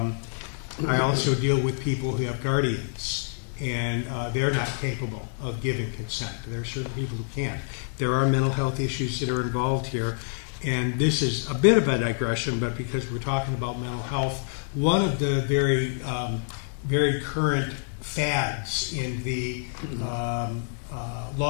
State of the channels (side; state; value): right; silent; digital silence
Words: also deal with people who have guardians, and they're not capable of giving consent. There are certain people who can't. There are mental health issues that are involved here, and this is a bit of a digression, but because we're talking about mental health, one of the very current fads in the